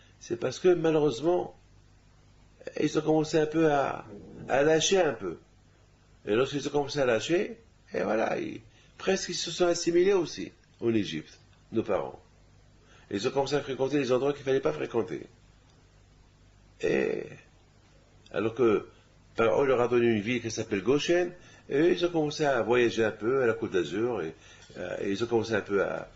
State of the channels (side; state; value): both; identical; correlation 1.00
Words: C'est parce que malheureusement, ils ont commencé un peu à lâcher un peu. Et lorsqu'ils ont commencé à lâcher, et voilà, presque ils se sont assimilés aussi en Égypte, nos parents. Et ils ont commencé à fréquenter les endroits qu'il ne fallait pas fréquenter. Et alors que on leur a donné une ville qui s'appelle Goshen, et eux, ils ont commencé à voyager un peu à la Côte d'Azur, et ils ont commencé un peu à